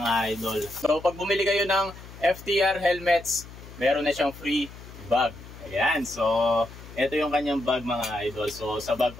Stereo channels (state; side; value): noise; left; hum, 16 dB below the sound